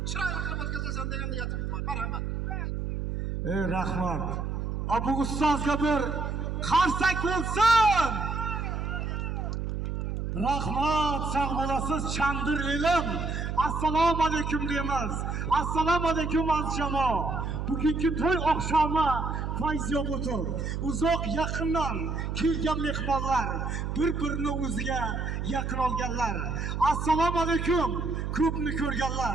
chiroyli qilib o'tkazasan degan niyatimiz bor. Marhamat. Rahmat. Bu ustozga bir qarsak bo'lsin. Rahmat, sog' bo'lasiz, chandir elim. Assalomu alaykum deymiz. Assalomu alaykum aziz jamoa. Bugungi to'y oqshomi fayzyob o'tir. Uzoq yaqindan kelgan mehmonlar, bir-birini o'ziga yaqin olganlar. Assalomu alaykum, ko'pni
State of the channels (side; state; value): right; noise; hum, 3 dB below the sound